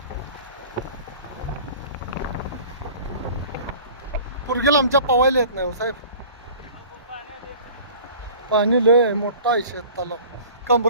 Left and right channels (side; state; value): both; inverted; correlation -0.44